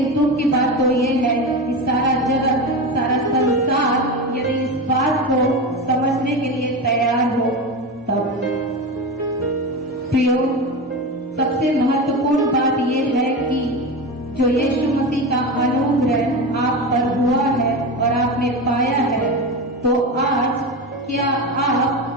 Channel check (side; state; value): both; normal; correlation 0.22